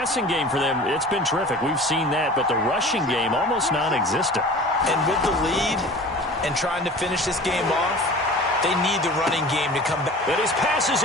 game for them, it's been terrific. We've seen that. But the rushing game, almost non-existent. And with the lead and trying to finish this game off, they need the running game to come back. And his pass is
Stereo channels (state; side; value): normal; both; correlation 0.40